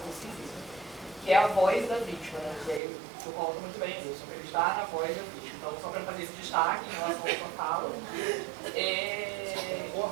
que é a voz da vítima, né? E aí o senhor coloca muito bem isso, acreditar na voz da vítima. Então, só para fazer esse destaque em relação à sua fala.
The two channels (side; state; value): left; drops out; at 2.8 s